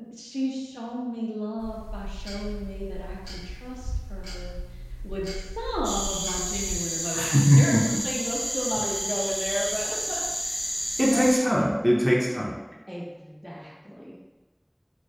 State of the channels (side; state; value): both; identical; correlation 1.00